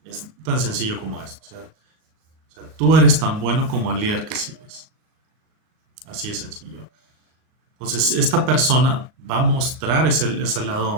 Es tan sencillo como esto. O sea, tú eres tan bueno como el líder que sigues. Así de sencillo. Entonces, esta persona va a mostrar ese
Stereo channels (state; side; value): late; left; 39 ms